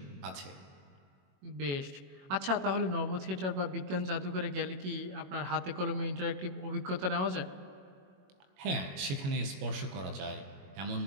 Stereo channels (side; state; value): left; late; 21 ms